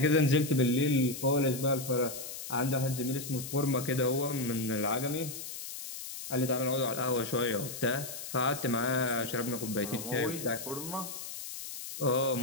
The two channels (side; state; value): left; noise; hiss, 9 dB below the sound